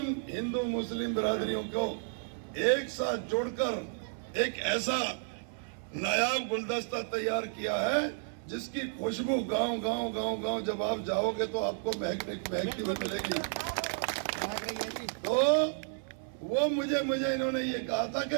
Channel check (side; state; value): left; silent; 55 dB below the other